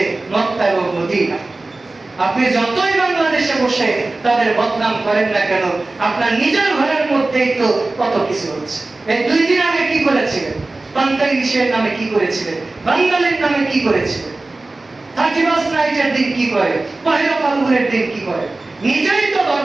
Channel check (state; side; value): quieter; left; 3.1 dB